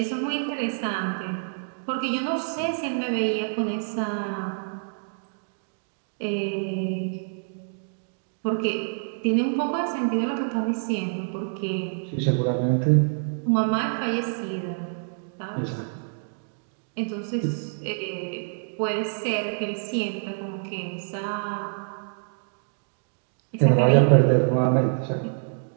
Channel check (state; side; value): silent; left; digital silence